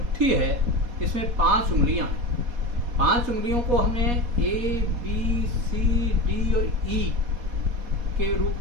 है, इसमें 5 उंगलियां हैं। 5 उंगलियों को हमने A, B, C, D और E के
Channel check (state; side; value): late; left; 4.2 ms